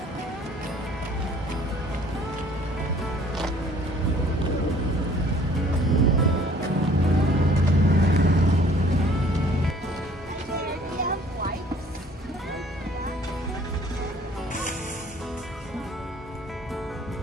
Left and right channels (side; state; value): both; normal; correlation 0.55